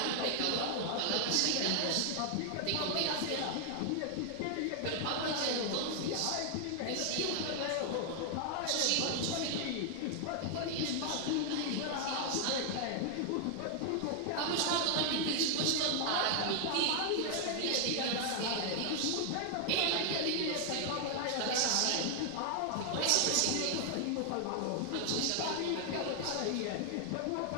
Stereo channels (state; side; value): different; both; correlation 0.00